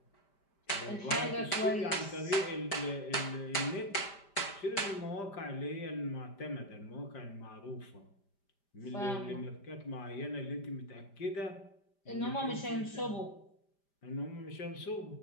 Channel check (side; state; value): right; late; 5.0 ms